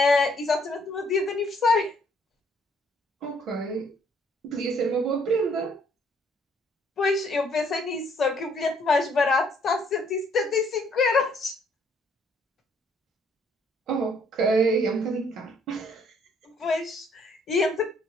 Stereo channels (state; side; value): normal; both; correlation 0.65